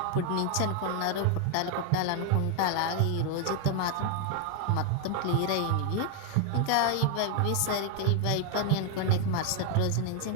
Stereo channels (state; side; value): different; both; correlation 0.01